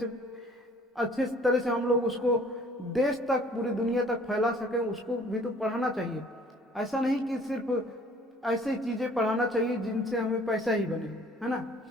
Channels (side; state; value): both; normal; correlation 0.55